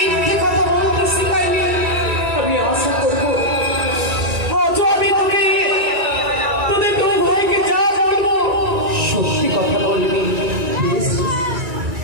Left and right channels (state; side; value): late; left; 2.3 ms